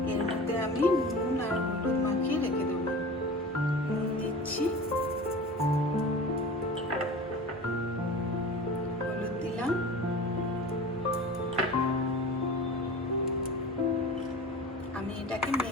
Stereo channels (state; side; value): normal; both; correlation 0.36